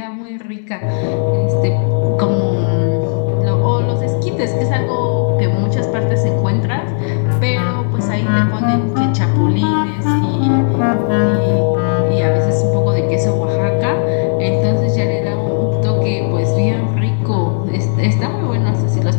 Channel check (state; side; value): silent; right; digital silence